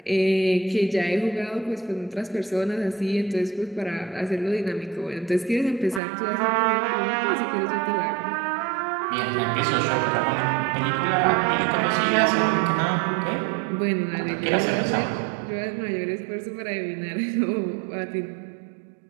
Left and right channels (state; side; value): drops out; left; at 6.0 s